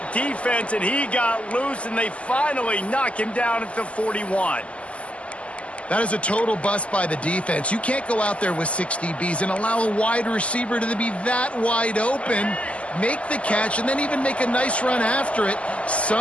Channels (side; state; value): right; late; 0.061 ms